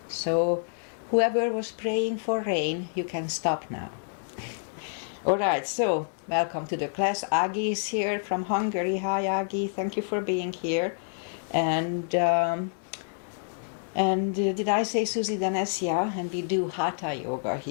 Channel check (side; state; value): right; silent; digital silence